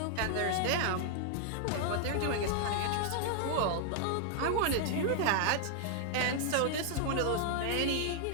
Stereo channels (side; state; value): both; different; correlation 0.00